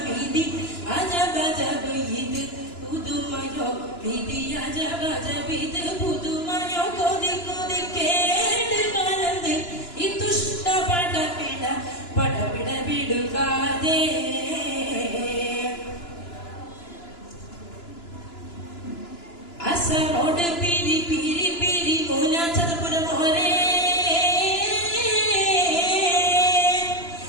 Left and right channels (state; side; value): late; right; 2.9 ms